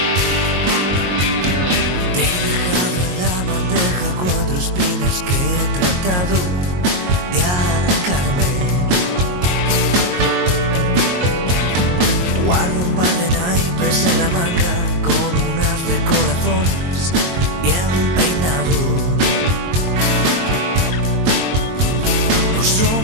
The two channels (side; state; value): left; late; 22 ms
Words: Que he tratado de arrancarme. Guardo un par de naipes en la manga con unas de corazones bien peinados. No